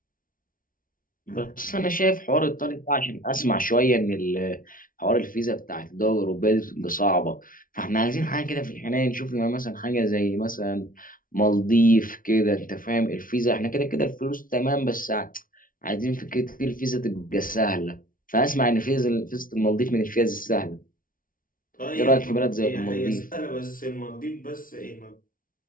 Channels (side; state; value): right; late; 0.40 ms